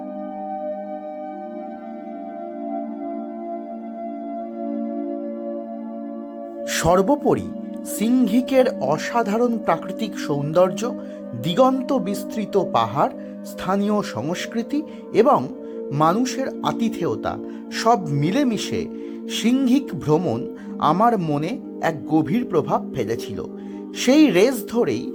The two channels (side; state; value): both; identical; correlation 1.00